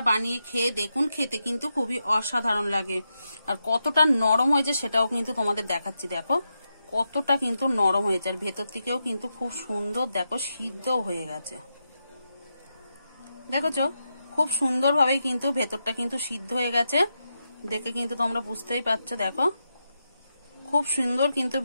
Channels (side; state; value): both; inverted; correlation -0.86